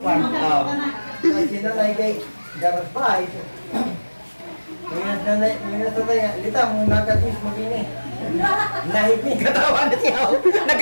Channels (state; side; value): inverted; both; correlation -1.00